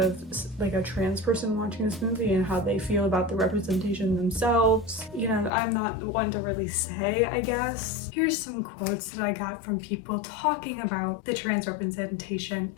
like a trans person watching this movie and how they feel about the representation themselves. You know, I'm not one to really say, I guess. Here's some quotes that I got from people talking about the trans representation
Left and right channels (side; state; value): right; drops out; at 5.5 s